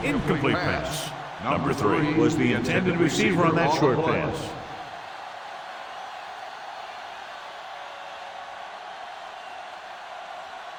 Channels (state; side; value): identical; both; correlation 1.00